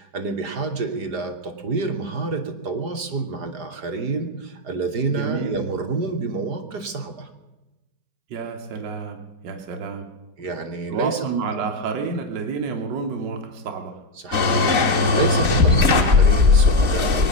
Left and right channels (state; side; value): late; left; 4.0 ms